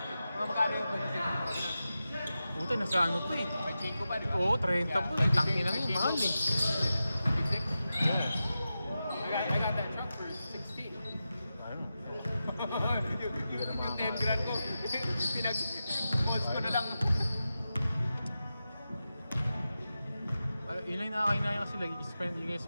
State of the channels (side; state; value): both; inverted; correlation -0.92